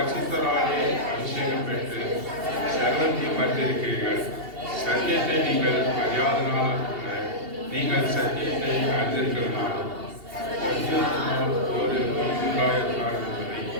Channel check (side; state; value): left; late; 2.8 ms